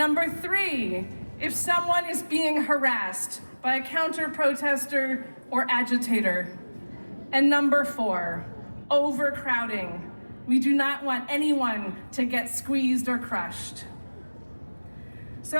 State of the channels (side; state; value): both; inverted; correlation -1.00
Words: 3, if someone is being harassed by a counter-protester or agitator. And number 4, overcrowding. We do not want anyone to get squeezed or crushed.